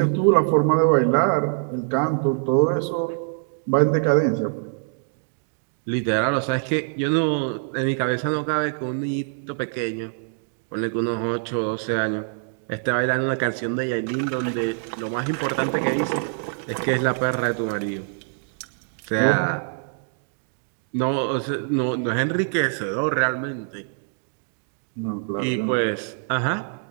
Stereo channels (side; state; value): left; silent; digital silence